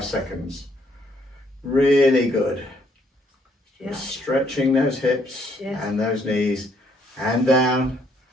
seconds. Really good. Yeah. Just stretching those hips and those knees, and down.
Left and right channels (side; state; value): both; normal; correlation 0.68